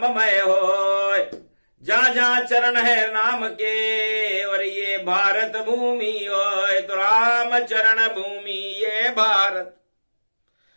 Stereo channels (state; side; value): inverted; both; correlation -1.00